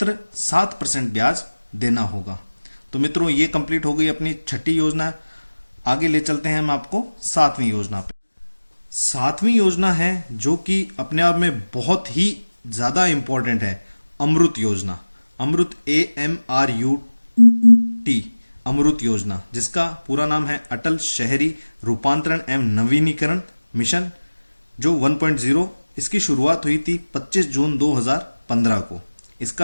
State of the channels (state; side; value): inverted; both; correlation -1.00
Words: 7% ब्याज देना होगा। तो मित्रों, ये कंप्लीट हो गई अपनी छठी योजना। आगे ले चलते हैं हम आपको 7वीं योजना पे। 7वीं योजना है जो कि अपने आप में बहुत ही ज्यादा इंपॉर्टेंट है, अमृत योजना। अमृत AMRUT, अमृत योजना, जिसका पूरा नाम है अटल शहरी रूपांतरण एवं नवीनीकरण मिशन, जो 1.0। इसकी शुरुआत हुई थी 25 जून 2015 को।